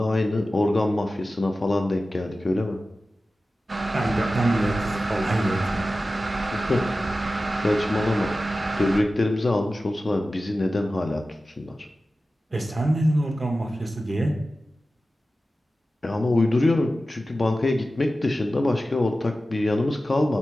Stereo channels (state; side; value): normal; both; correlation 0.95